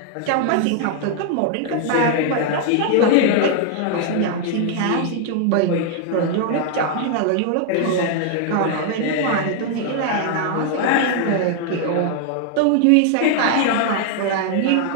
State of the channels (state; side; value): different; both; correlation 0.00